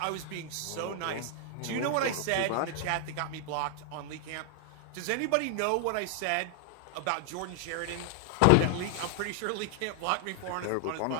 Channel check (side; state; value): both; different; correlation 0.00